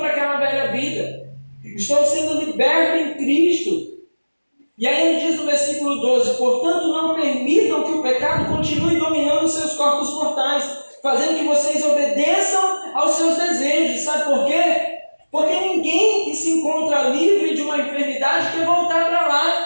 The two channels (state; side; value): inverted; both; correlation -1.00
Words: aquela velha vida, estou sendo liberto em Cristo. E aí ele diz no versículo 12: portanto, não permitam que o pecado continue dominando os seus corpos mortais, fazendo que vocês obedeçam aos seus desejos. Sabe por quê? Porque ninguém que se encontra livre de uma enfermidade quer voltar para